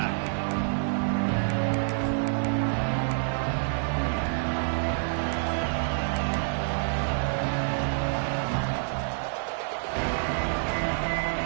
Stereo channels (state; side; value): silent; left; 60 dB below the other